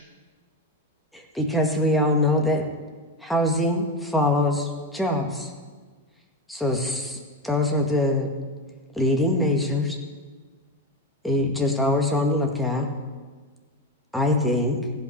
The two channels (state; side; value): normal; both; correlation 0.16